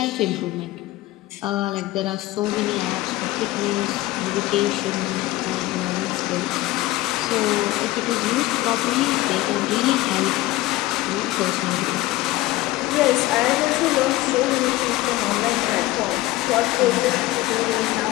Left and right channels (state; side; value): quieter; right; 17.7 dB